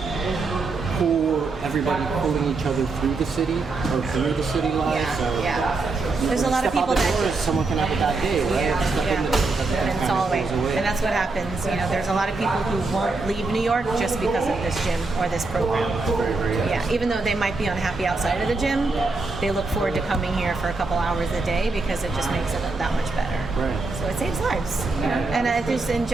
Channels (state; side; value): quieter; left; 3.7 dB